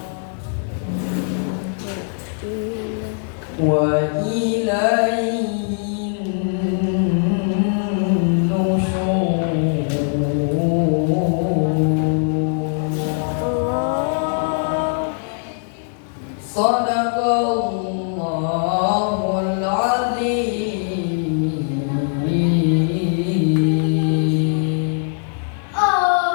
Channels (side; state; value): right; silent; 65 dB below the other